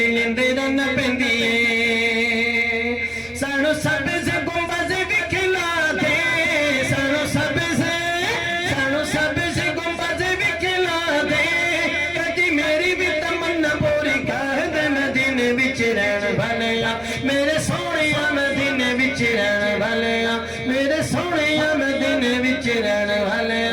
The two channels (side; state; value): both; identical; correlation 1.00